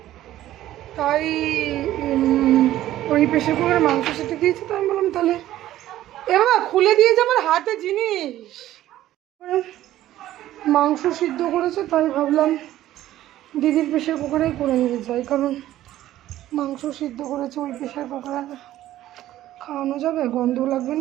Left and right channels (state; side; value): quieter; left; 13.8 dB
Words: তাই ওই প্রেশার কুকারে মাংস সিটি দিয়েছে। তো আমি বললাম তাহলে এবার খুলে দিয়েছে আমার হাতে জিনিস, মাংস সিদ্ধ করেছে, তাই ভাবলাম দিদির প্রেশার কুকারেই করে নিয়ে যাই, কারণ মাংস সিদ্ধ করেছে ওই প্রেশার কুকারে খাওয়ানো যাবে, গন্ধ লাগবে